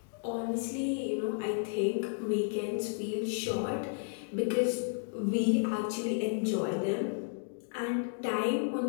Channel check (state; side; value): silent; right; digital silence